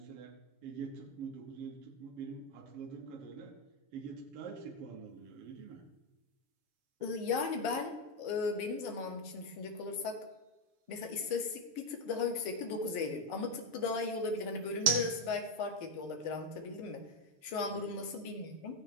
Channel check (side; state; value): left; late; 7.0 ms